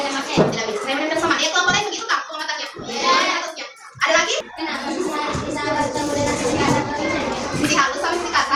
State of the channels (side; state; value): both; identical; correlation 1.00